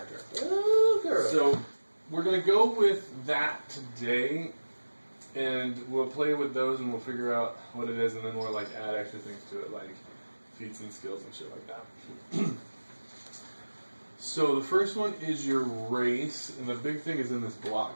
Okay. So we're going to go with that today. And we'll play with those and we'll figure out what it is, and then we'll add extra things to it, like feats and skills and shit like that. So the first one is your race, and the big thing is in this block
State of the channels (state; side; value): inverted; both; correlation -1.00